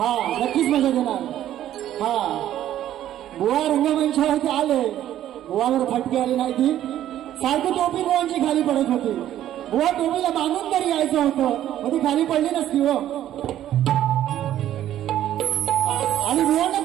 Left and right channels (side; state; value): left; quieter; 12.1 dB